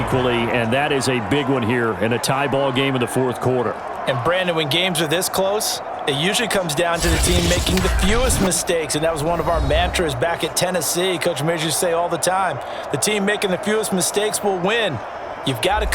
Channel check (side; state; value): both; identical; correlation 1.00